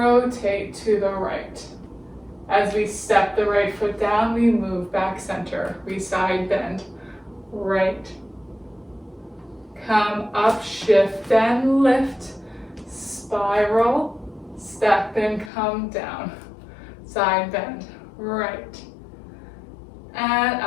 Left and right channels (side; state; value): right; drops out; at 15.5 s